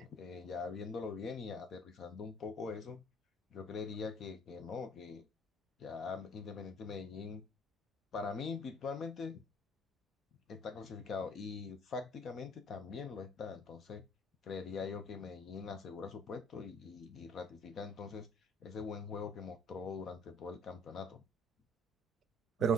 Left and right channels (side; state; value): both; normal; correlation 0.56